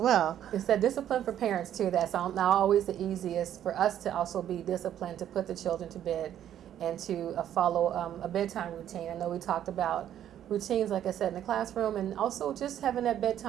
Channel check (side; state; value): left; quieter; 10.8 dB